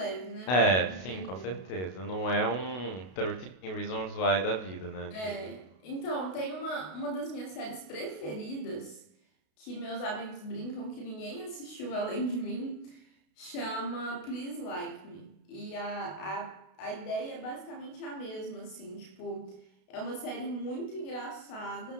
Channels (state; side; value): late; right; 32 ms